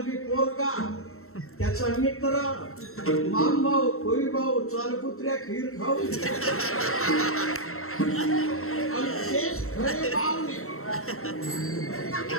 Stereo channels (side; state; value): right; late; 0.63 ms